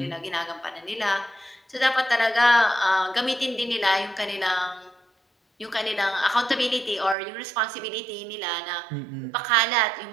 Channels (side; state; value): left; drops out; at 7.2 s